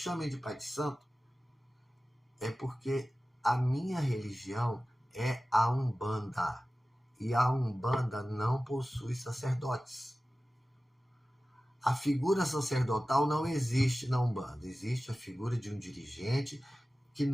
de pai de santo, é porque a minha religião é a Umbanda. E a Umbanda não possui sacerdotes. A figura sacerdotal não existe na Umbanda. Existe a figura de um dirigente que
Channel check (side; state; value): both; normal; correlation 0.96